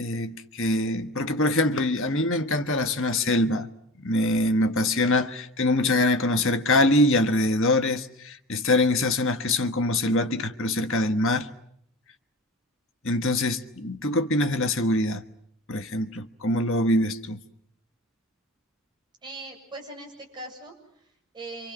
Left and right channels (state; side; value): normal; both; correlation 0.34